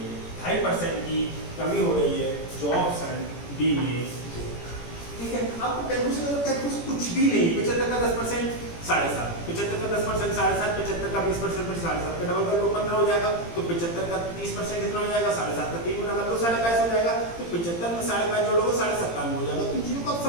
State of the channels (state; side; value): late; right; 17 ms